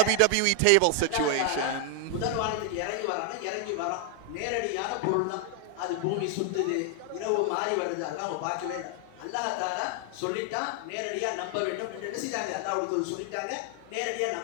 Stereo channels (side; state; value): both; different; correlation 0.00